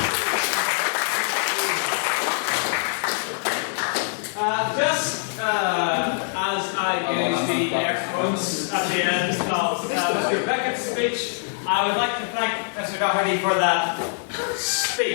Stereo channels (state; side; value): silent; right; 63 dB below the other